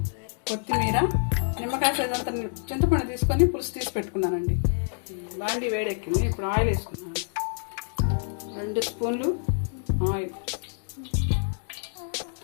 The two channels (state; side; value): silent; right; digital silence